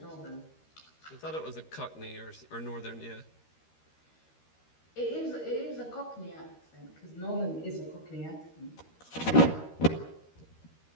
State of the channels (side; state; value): right; late; 13 ms